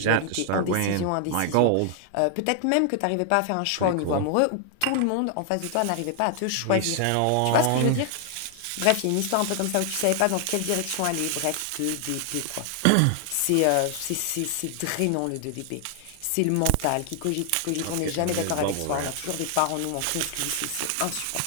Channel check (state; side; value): different; both; correlation 0.00